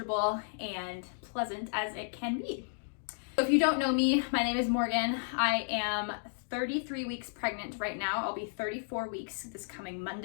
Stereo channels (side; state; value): right; silent; digital silence